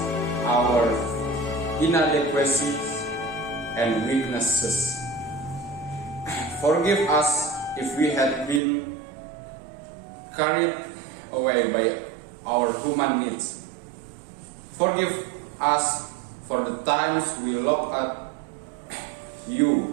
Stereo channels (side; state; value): left; drops out; at 8.6 s